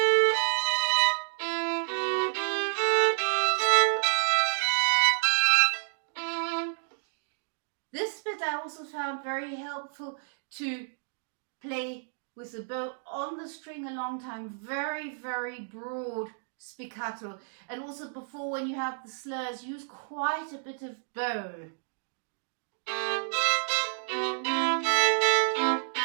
This bit I also found very helpful to play with the bow on the string a long time, very, very broad spiccato. And also before, when you have the slurs, use quite a bit of bow.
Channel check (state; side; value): silent; left; digital silence